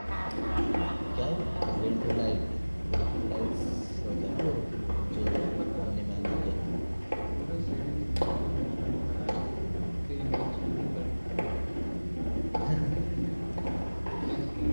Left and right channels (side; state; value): both; inverted; correlation -1.00